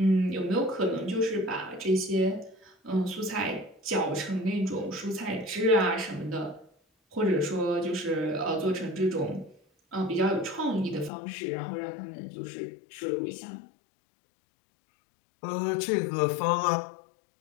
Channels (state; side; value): drops out; right; at 11.1 s